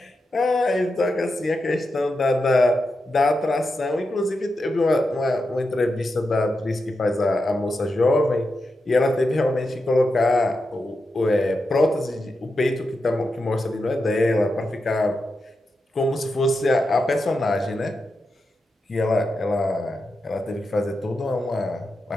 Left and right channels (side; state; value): both; normal; correlation 0.88